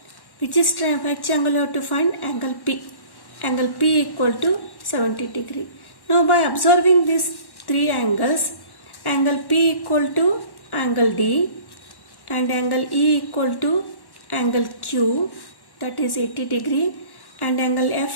which angle we have to find? Angle P. Angle P equal to 70 degree. Now by observing these three angles, angle P equal to angle D and angle E equal to angle Q, that is 80 degree, and angle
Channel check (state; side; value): late; right; 1.1 ms